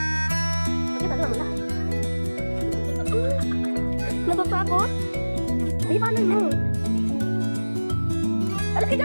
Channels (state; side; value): inverted; both; correlation -1.00